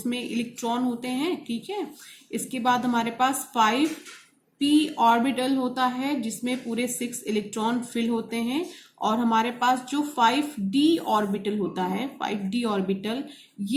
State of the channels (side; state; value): both; identical; correlation 1.00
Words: इलेक्ट्रॉन होते हैं. ठीक है, इसके बाद हमारे पास 5p ऑर्बिटल होता है जिसमें पूरे 6 इलेक्ट्रॉन फिल होते हैं. और हमारे पास जो 5d ऑर्बिटल होता है, 5d ऑर्बिटल